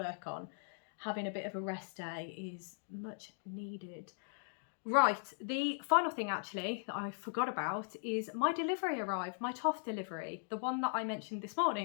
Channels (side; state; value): right; silent; digital silence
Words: on. Having a bit of a rest day is much needed. Right, the final thing actually that I forgot about is my delivery arrived, my Toft delivery, the one that I mentioned this